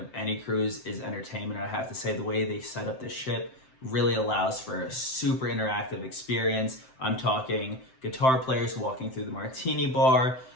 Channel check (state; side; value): late; right; 7.7 ms